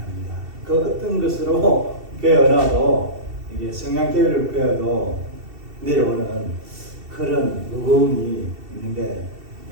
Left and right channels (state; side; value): late; left; 2.7 ms